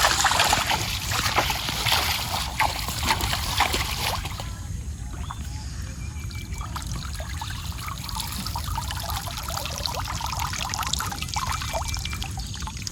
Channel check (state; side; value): identical; both; correlation 1.00